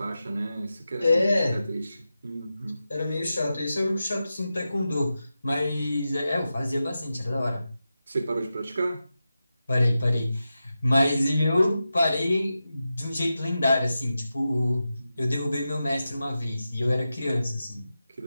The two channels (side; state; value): both; inverted; correlation -0.92